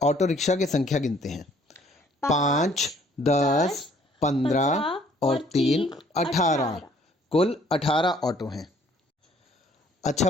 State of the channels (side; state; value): both; normal; correlation 0.60